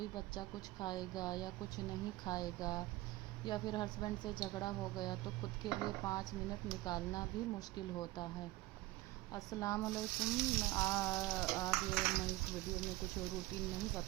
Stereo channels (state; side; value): quieter; left; 18.5 dB